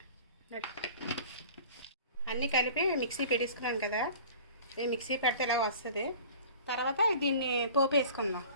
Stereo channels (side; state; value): both; inverted; correlation -0.43